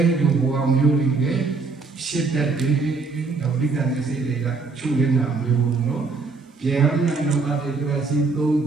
ဲ့ဒီဘဝမျိုးတွေရှစ်တက်တွေဒါပဋိသန္ဓေစိတ်တွေကချုပ်နေတာမျိုးနော်ဗျာညာနောအတေကစီသုံး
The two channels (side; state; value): left; quieter; 4.3 dB